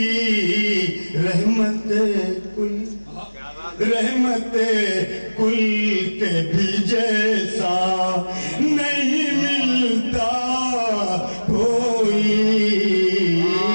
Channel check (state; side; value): inverted; both; correlation -1.00